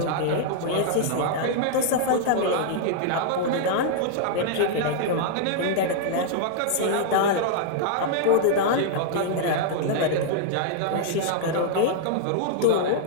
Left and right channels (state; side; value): different; both; correlation -0.01